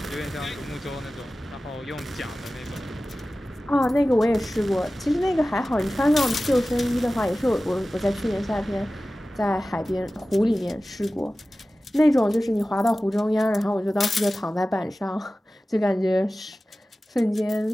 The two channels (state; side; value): normal; both; correlation 0.96